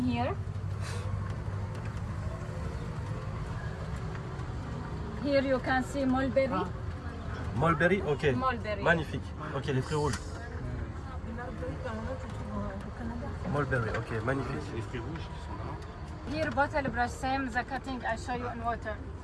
Here you can see mulberry. Mulberry, ok. Mulberry. Magnifique. Ok, les fruits rouges. Mulberry, ok, magnifique. C'est les fruits rouges qui sont là. Here bottle brush, same the cutting I show you in water.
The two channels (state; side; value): identical; both; correlation 1.00